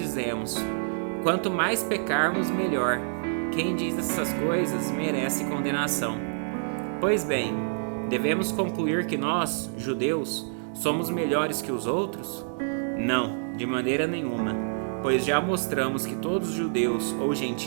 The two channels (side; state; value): left; silent; digital silence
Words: quanto mais pecarmos, melhor. Quem diz essas coisas merece condenação. Pois bem, devemos concluir que nós, judeus, somos melhores que os outros? Não, de maneira nenhuma, pois já mostramos que todos os judeus ou